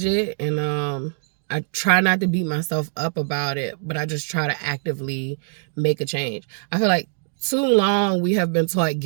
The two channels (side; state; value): left; silent; digital silence